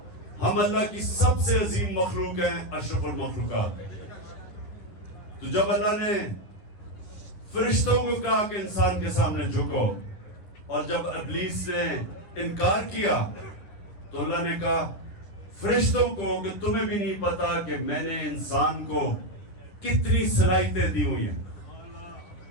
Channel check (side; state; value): right; late; 10 ms